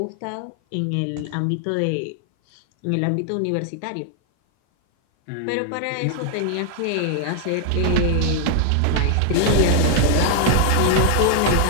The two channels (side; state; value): both; different; correlation 0.00